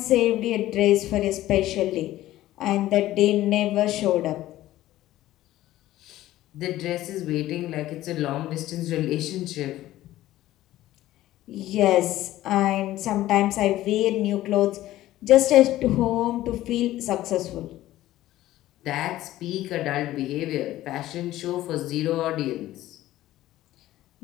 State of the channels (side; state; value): right; quieter; 14.9 dB